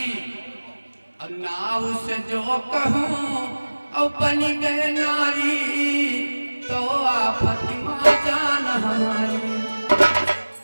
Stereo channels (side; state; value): both; inverted; correlation -1.00